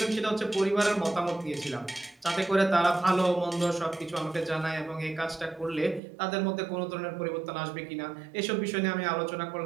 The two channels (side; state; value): left; drops out; at 6.0 s